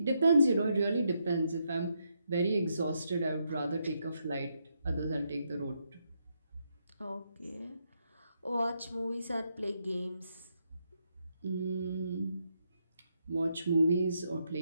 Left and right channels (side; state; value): both; inverted; correlation -0.80